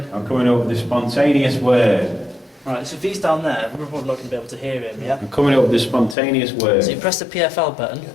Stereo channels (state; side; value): drops out; right; at 6.2 s